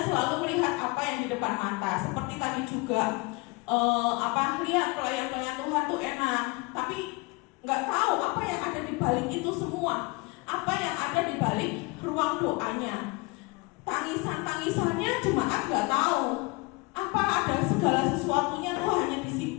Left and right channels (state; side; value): quieter; right; 25.9 dB